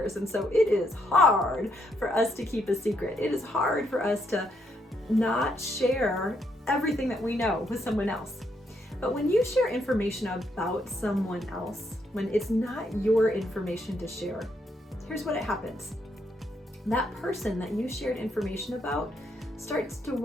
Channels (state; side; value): normal; both; correlation 0.75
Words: And so it is hard for us to keep a secret. It is hard for us to not share everything that we know with someone else. But when you share information about someone else, when it's not your information to share, here's what happens. That person that you shared information about starts to